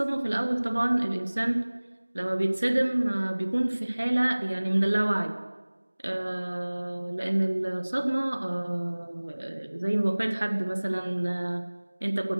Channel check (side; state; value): both; inverted; correlation -1.00